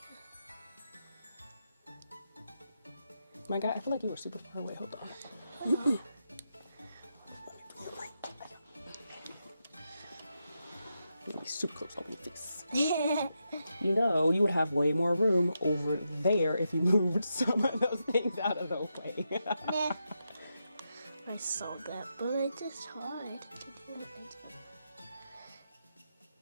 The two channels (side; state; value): both; inverted; correlation -0.85